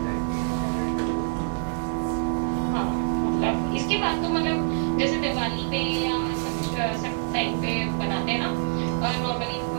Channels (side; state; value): left; silent; 61 dB below the other